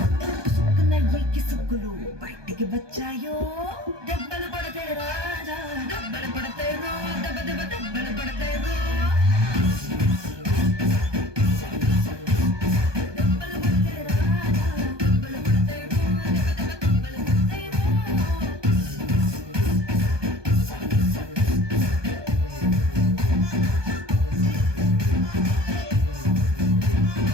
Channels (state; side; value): late; left; 1.2 ms